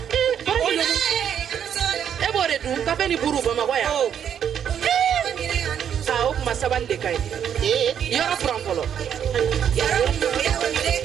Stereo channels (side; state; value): left; quieter; 8.8 dB